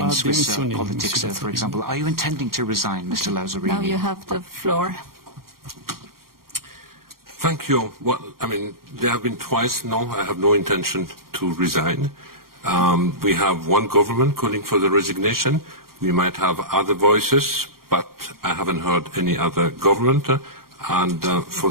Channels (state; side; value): late; left; 0.92 ms